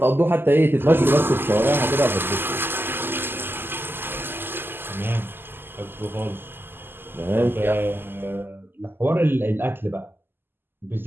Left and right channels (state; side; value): late; left; 0.10 ms